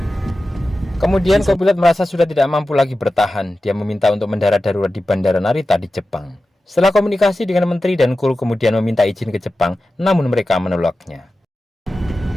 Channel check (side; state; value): both; normal; correlation 0.94